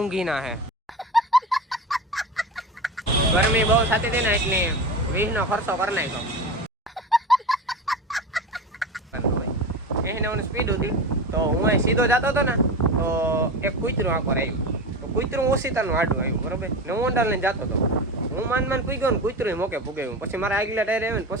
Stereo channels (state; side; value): normal; both; correlation 0.26